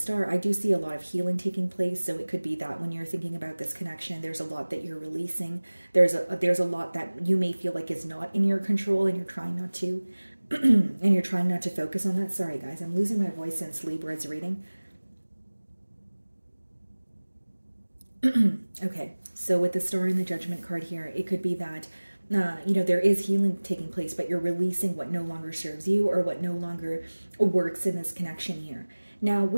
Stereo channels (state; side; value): inverted; both; correlation -1.00